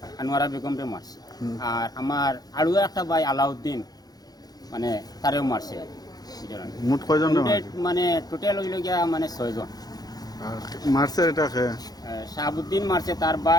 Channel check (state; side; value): late; right; 0.19 ms